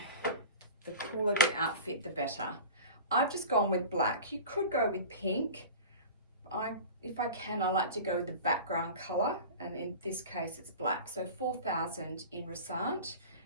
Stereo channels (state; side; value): inverted; both; correlation -0.34